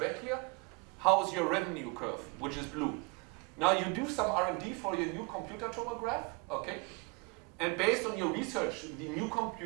here? How is your revenue curve, which is blue? Now you do some R&D for your new computer tomograph, okay? And based on your research, the new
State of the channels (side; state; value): left; quieter; 30.9 dB